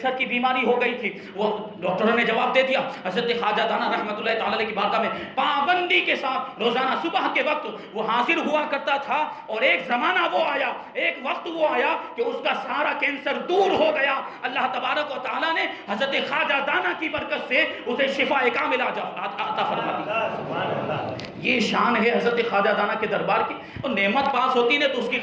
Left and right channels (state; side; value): identical; both; correlation 1.00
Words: کی بیماری ہو گئی تھی، وہ ڈاکٹروں نے جواب دے دیا حضرت خواجہ دانا رحمۃ اللہ تعالی علیہ کی بارگاہ میں پابندی کے ساتھ روزانہ صبح کے وقت وہ حاضر ہوا کرتا تھا. اور ایک زمانہ وہ آیا، ایک وقت وہ آیا کہ اس کا سارا کینسر دور ہو گیا. اللہ تبارک و تعالیٰ نے حضرت خواجہ دانا کی برکت سے اسے شفا کاملہ عطا فرما دی. یہ شان ہے حضرت خواجہ دانا کے دربار کی. اور نعمت پاس ہوتی ہے تو اس کی